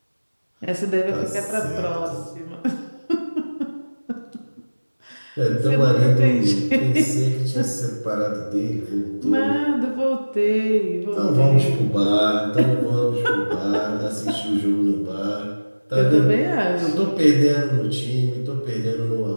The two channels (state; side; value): inverted; both; correlation -1.00